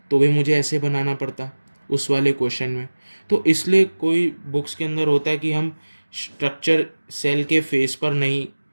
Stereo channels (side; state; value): both; inverted; correlation -1.00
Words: तो भी मुझे ऐसे बनाना पड़ता उस वाले क्वेश्चन में। तो इसलिए कोई बुक्स के अंदर होता है कि हम स्ट्रक्चर सेल के फेस पर नहीं